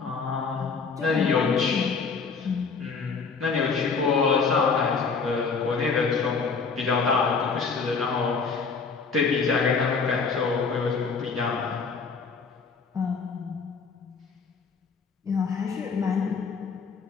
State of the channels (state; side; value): quieter; right; 5.0 dB